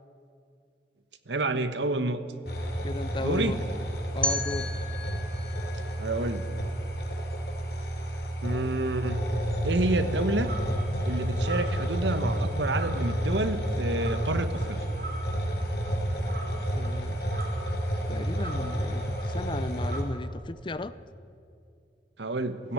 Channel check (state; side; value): normal; both; correlation 0.60